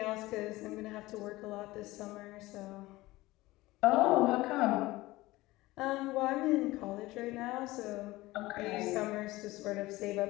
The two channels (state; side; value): quieter; right; 19.0 dB